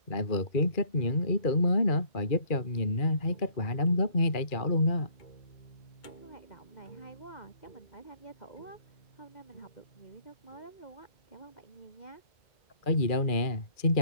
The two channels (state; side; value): late; right; 2.3 ms